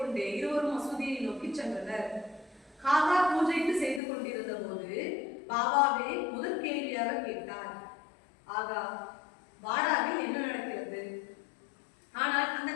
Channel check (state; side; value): drops out; right; at 4.0 s